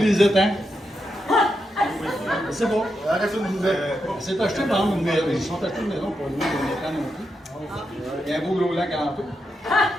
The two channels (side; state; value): both; normal; correlation 0.85